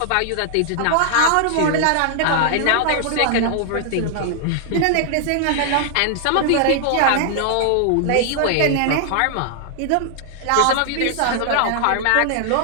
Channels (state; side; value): different; both; correlation -0.01